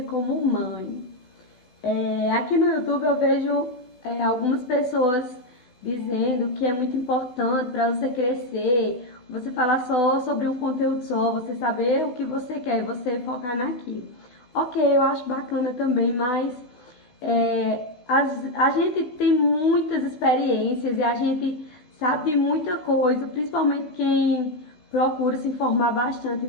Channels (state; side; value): late; right; 16 ms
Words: como mãe. Aqui no YouTube eu vejo algumas pessoas dizendo que é muito importante para você crescer, você falar só sobre um conteúdo só, você saber o que você quer e você focar naquilo. Ok, eu acho bacana também, mas a gente tem muitas experiências e a gente sabe de muita coisa, principalmente quem procura se informar bastante,